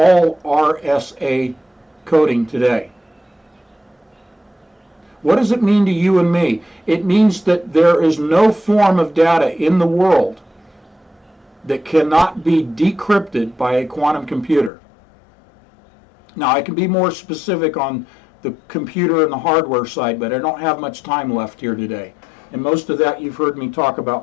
RSA coding today. What does it mean to you and me? It means that there is no form of data in the world that cannot be decrypted by a quantum computer. Now, I can be more specific on the computer and the hardware side, but I don't have much time left here today. And most of that you've heard me talk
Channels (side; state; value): right; drops out; at 14.7 s